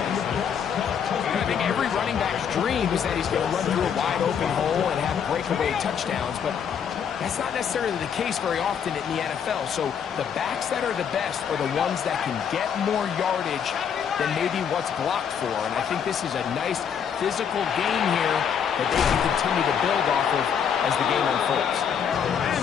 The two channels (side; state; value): right; quieter; 7.7 dB